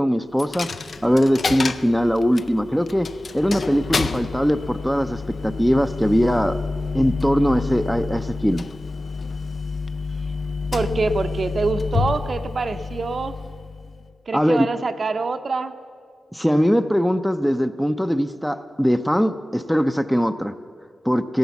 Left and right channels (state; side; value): normal; both; correlation 0.96